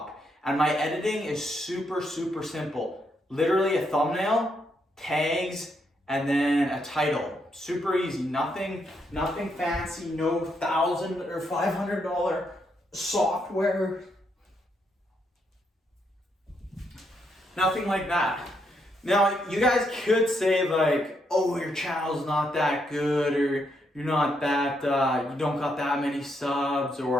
And my editing is super, super simple. Literally a thumbnail, tags, and then a title. Super easy, nothing fancy, no $1,000 or $500 software. Nothing like that. Now, you guys could say like, oh, your channel's not that good, or you're not that, you don't got that many subs,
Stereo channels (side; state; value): both; normal; correlation 0.77